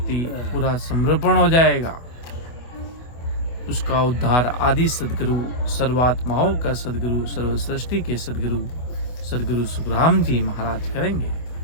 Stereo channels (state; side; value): late; right; 24 ms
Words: पूरा समर्पण हो जाएगा, उसका उद्धार आदि सदगुरु, सर्वात्माओं का सदगुरु, सर्व सृष्टि के सदगुरु, सदगुरु सुखराम जी महाराज करेंगे।